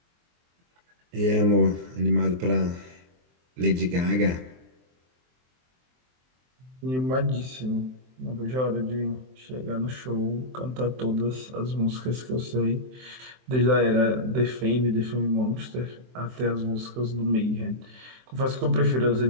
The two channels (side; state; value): left; late; 23 ms